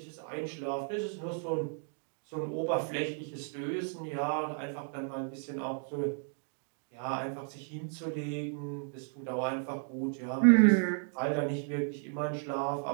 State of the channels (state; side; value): silent; left; 55 dB below the other